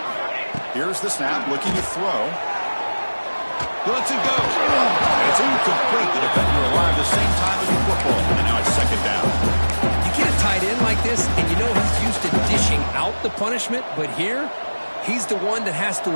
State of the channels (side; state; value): both; inverted; correlation -1.00